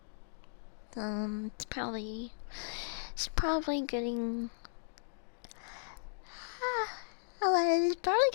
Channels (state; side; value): silent; right; digital silence